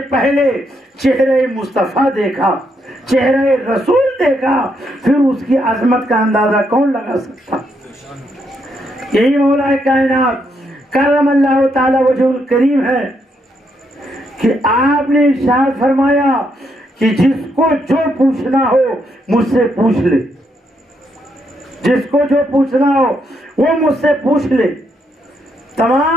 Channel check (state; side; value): normal; both; correlation 0.77